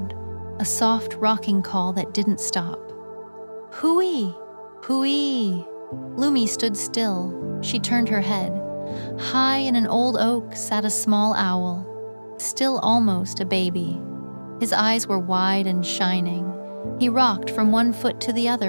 a soft rocking call that didn't stop. Hooey! Hooey! Lumi stood still. She turned her head. High in an old oak sat a small owl, still almost a baby. His eyes were wide and shining. He rocked from one foot to the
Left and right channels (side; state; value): both; inverted; correlation -1.00